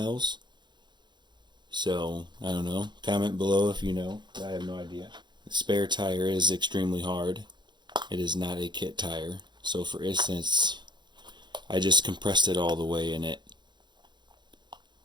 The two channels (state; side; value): late; left; 0.22 ms